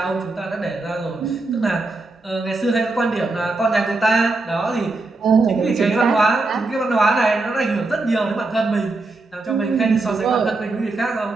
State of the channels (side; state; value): left; quieter; 3.3 dB